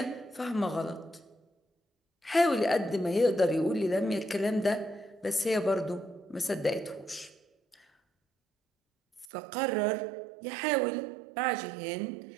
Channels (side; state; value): left; drops out; at 9.3 s